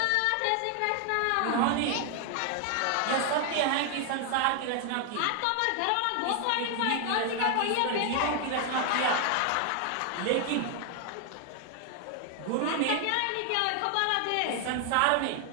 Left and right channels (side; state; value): both; different; correlation 0.00